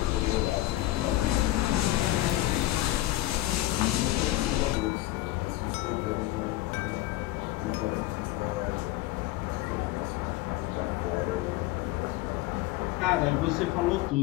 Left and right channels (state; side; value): quieter; right; 16.5 dB